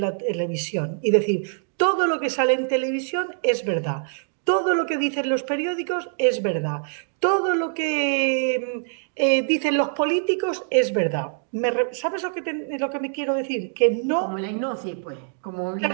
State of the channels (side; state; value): left; silent; digital silence